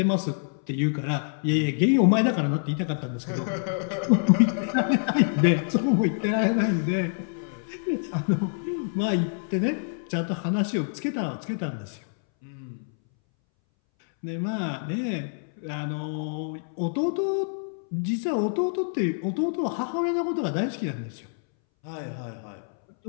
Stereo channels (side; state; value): right; silent; 61 dB below the other